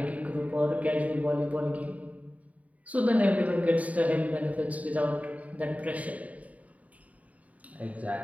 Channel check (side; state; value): left; late; 0.070 ms